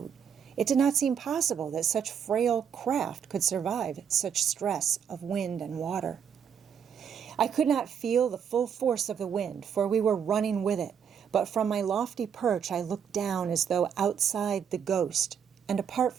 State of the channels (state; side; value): quieter; left; 7.7 dB